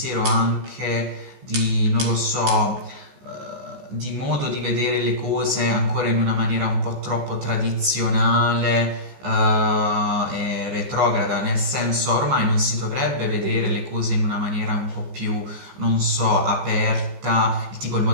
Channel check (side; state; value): left; late; 15 ms